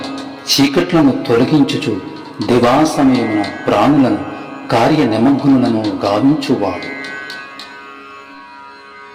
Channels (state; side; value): identical; both; correlation 1.00